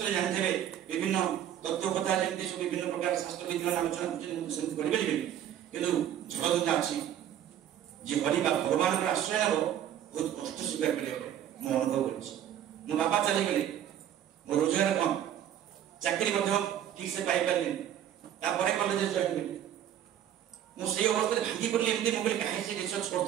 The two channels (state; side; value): quieter; left; 10.6 dB